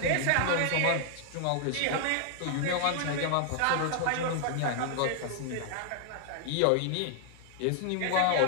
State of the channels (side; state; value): both; different; correlation 0.00